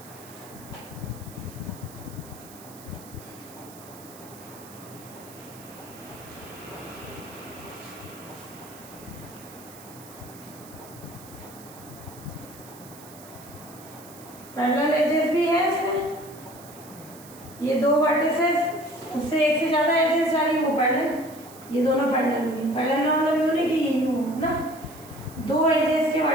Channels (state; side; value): noise; right; hiss, 19 dB below the sound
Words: पैरेलल एजेस भी है इसमें। ये दो वर्टिसेस, उससे एक से ज्यादा एजेस वाली वो पैरेलल, ये दोनों पैरेलल हुई। पैरेलल का मतलब यूं नहीं कि यही हो ना, दो एजेस के